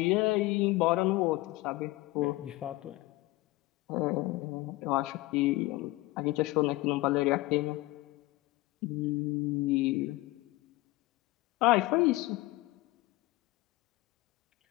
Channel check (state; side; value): quieter; right; 19.9 dB